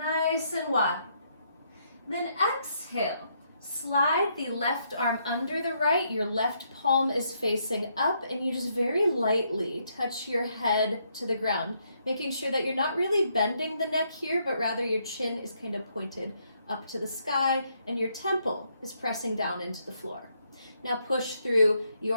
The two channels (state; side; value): inverted; both; correlation -0.75